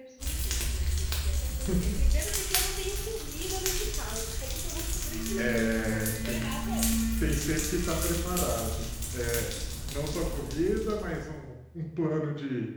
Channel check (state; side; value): identical; both; correlation 1.00